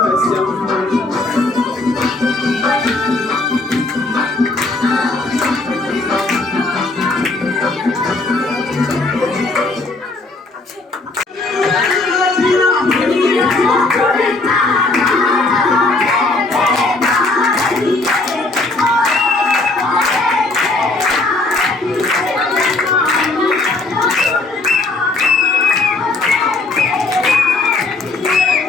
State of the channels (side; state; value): right; quieter; 3.2 dB